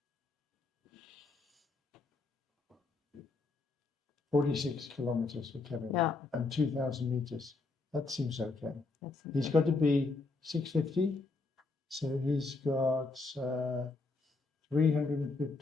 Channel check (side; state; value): right; quieter; 3.7 dB